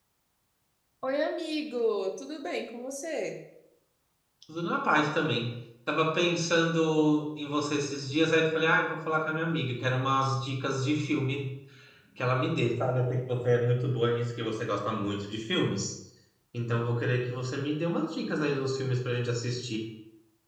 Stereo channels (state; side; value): identical; both; correlation 1.00